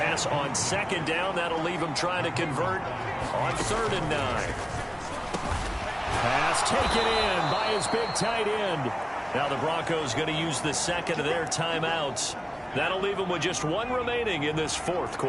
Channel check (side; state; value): both; identical; correlation 1.00